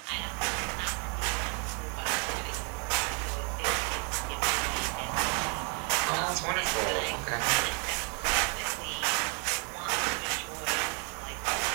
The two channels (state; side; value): quieter; left; 36.9 dB